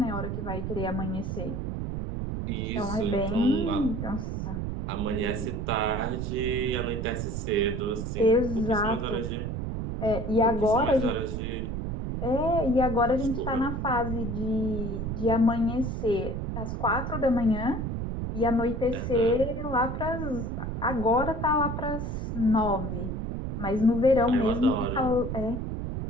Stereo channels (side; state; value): right; noise; rumble, 3 dB below the sound